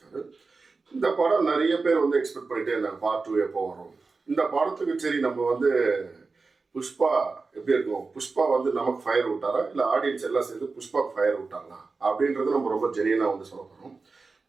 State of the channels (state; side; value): quieter; left; 4.1 dB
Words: இந்த படம் நிறைய பேர் வந்து எக்ஸ்பெக்ட் பண்ணிட்டே இருந்தாங்க பார்ட் 2 எப்போ வரும். இந்த படத்துக்கு சரி நம்ம வந்து புஷ்பா எப்படி இருக்கும், புஷ்பா வந்து நமக்கு ஃபயர் விட்டாரா இல்லை ஆடியன்ஸ் எல்லாம் சேர்ந்து புஷ்பாவுக்கு ஃபயர் விட்டாங்களா அப்படின்றது நம்ம ரொம்ப ஜெனியனாக வந்து சொல்ல போகிறோம்.